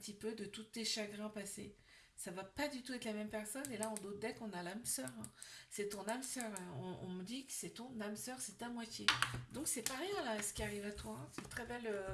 peu de tous tes chagrins passés. Ça va pas du tout être la même personne. Et là, en d'autres decks, on a l'âme sœur, hein. C'est ton âme sœur, hein. On me dit que c'est ton âme sœur, c'est ta moitié. Donc c'est pas rien là, ce qui arrive à toi, hein. C'est une très belle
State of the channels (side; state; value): both; identical; correlation 1.00